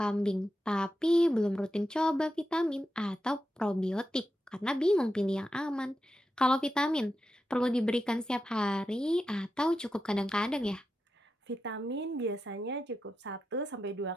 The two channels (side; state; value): both; normal; correlation 0.89